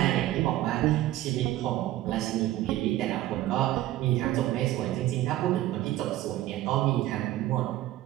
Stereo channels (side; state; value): left; quieter; 14.8 dB